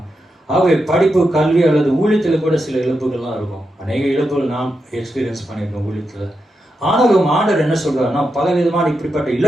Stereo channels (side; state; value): both; normal; correlation 0.86